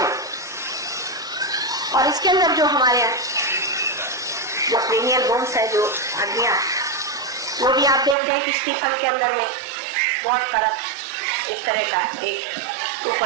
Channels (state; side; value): drops out; left; at 8.2 s